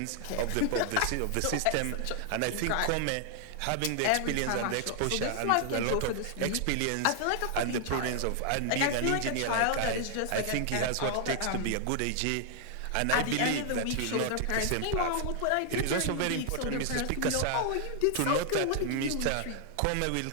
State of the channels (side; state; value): both; different; correlation 0.00